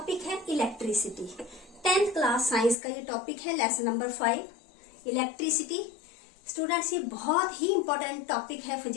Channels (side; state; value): right; drops out; at 2.8 s